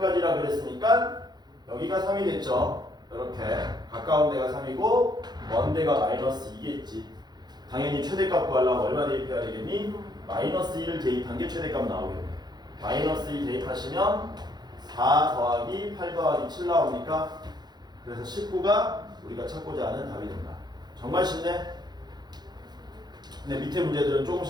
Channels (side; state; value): left; late; 0.20 ms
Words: 그랬으니까 여기가 3이 됐죠. 이렇게 가까운 데가 3이고 먼 데가 마이너스 2겠지. 당연히 최대값 구하려면 얼마 대입해야 되겠니? 마이너스 2를 대입한 게 최대값 나오겠네. 마이너스 2 대입하시면 4 더하기 8 더하기 7 나옵니까? 그래서 19가 우리가 찾고자 하는 답이 된다. 정말 쉽네? 근데 밑에 문제들은